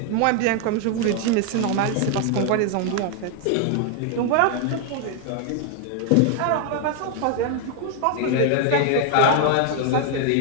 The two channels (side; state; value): both; different; correlation 0.00